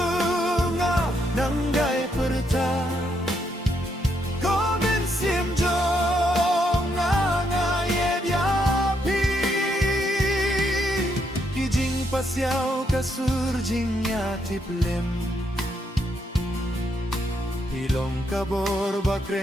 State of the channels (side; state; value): both; normal; correlation 0.76